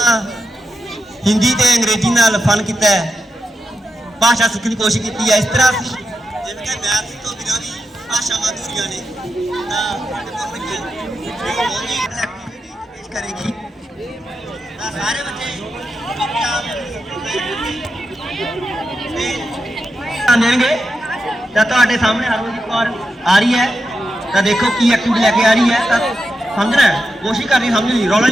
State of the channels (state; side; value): normal; both; correlation 0.87